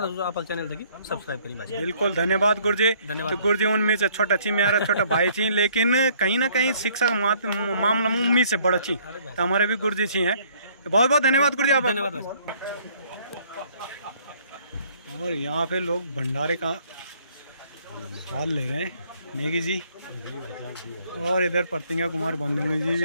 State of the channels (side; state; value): both; inverted; correlation -0.61